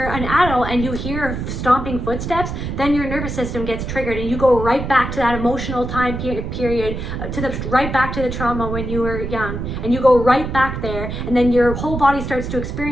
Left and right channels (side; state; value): right; noise; rumble, 5 dB below the sound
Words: an adult and you hear stomping footsteps, then your nervous system gets triggered, and you go right back to that emotional time period, right back to the trauma when you were young, and you go right back there, and then your whole body starts to